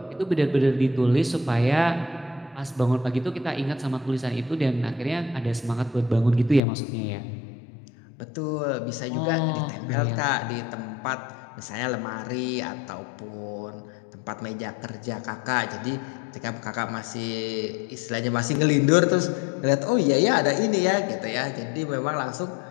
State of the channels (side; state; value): right; drops out; at 6.6 s